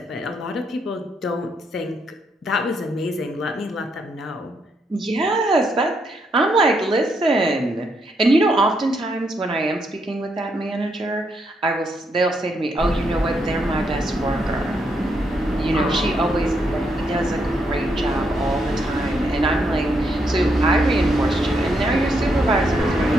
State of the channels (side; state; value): both; normal; correlation 0.77